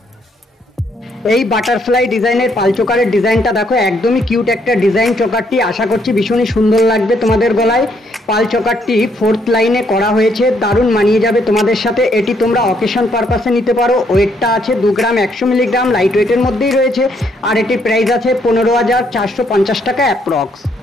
এই বাটারফ্লাই ডিজাইনের পাল চোকারের ডিজাইনটা দেখো, একদমই কিউট একটা ডিজাইন। চোকারটি আশা করছি ভীষণই সুন্দর লাগবে তোমাদের গলায়। পাল চোকারটি 4th লাইনে করা হয়েছে, দারুণ মানিয়ে যাবে তোমাদের সাথে। এটি তোমরা অকেশন পারপাসে নিতে পারো। ওয়েটটা আছে 2 গ্রাম 100 মিলিগ্রাম, লাইট ওয়েটের মধ্যেই রয়েছে। আর এটির প্রাইস আছে 15,450 টাকা অ্যাপ্রক্স।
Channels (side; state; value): both; normal; correlation 0.71